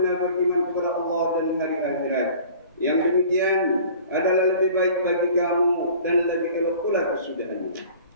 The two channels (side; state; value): both; inverted; correlation -0.46